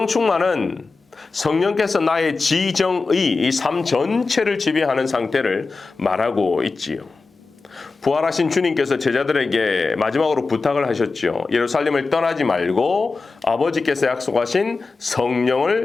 충만은 성령께서 나의 지정의, 이 삶 전체를 지배하는 상태를 말하고 있지요. 부활하신 주님께서 제자들에게 마지막으로 부탁을 하셨죠. 예루살렘을 떠나지 말고 아버지께서 약속하신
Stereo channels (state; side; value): quieter; right; 4.1 dB